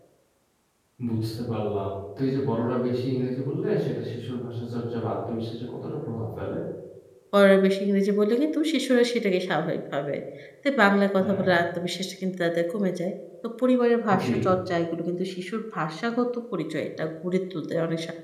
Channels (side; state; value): both; identical; correlation 1.00